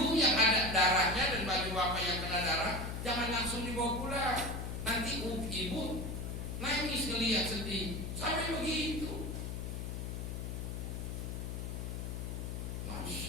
yang ada darahnya dan baju bapak yang kena darah, jangan langsung dibawa pulang. Nanti ibu nangis ngelihat sedih, sampai begitu.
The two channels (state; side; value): noise; left; hum, 4 dB below the sound